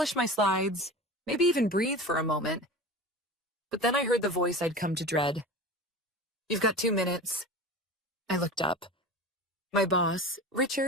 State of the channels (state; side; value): normal; both; correlation 0.32